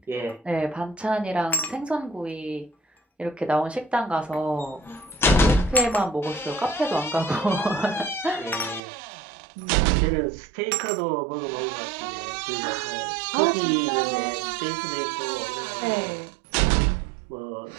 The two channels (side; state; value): left; drops out; at 8.8 s